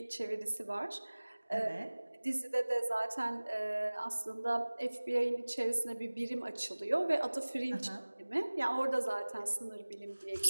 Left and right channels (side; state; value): both; inverted; correlation -1.00